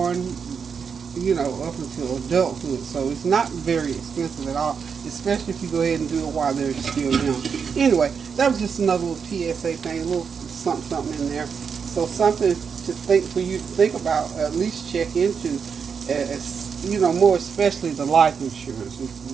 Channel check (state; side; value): quieter; left; 6.3 dB